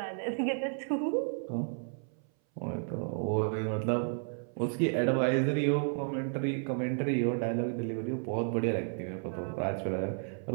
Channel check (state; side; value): silent; left; 56 dB below the other